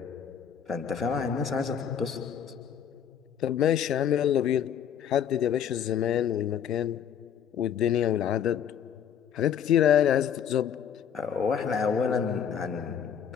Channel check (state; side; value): quieter; right; 8.6 dB